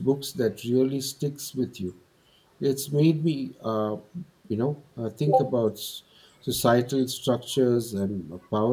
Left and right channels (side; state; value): both; identical; correlation 1.00